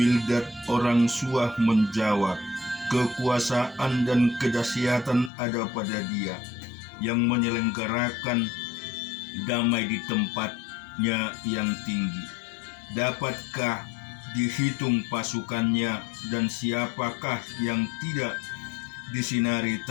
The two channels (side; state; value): right; drops out; at 5.3 s